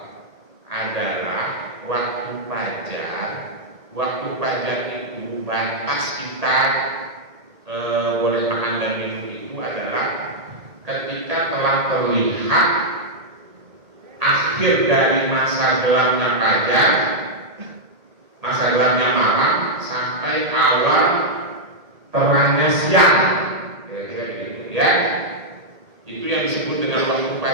adalah waktu fajar. Waktu fajar itu batas kita boleh makan dan minum itu adalah ketika telah terlihat akhir dari masa gelapnya fajar, masa gelapnya malam, sampai awal terangnya siang, kira-kira begitu ya. Itu yang disebut dengan waktu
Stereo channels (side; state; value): left; late; 1.8 ms